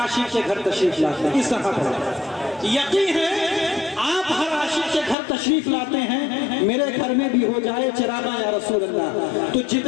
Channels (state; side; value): drops out; right; at 5.2 s